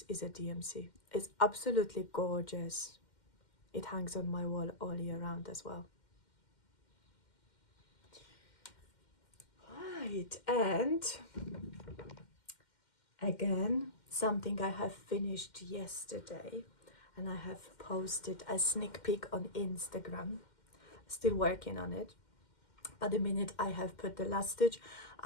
is a DMC. It's absolutely gorgeous. it hangs on my wall all year round as well. Right, and again, something I have finished yesterday, and I have posted a sneak peek on Instagram. Still working on it. But the minute I have put the last stitch,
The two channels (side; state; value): right; late; 2.1 ms